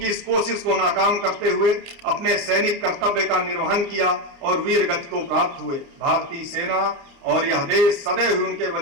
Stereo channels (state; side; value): late; left; 29 ms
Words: इस कोशिश को नाकाम करते हुए अपने सैनिक कर्तव्य का निर्वहन किया और वीर गति को प्राप्त हुए। भारतीय सेना और यह देश सदैव उनके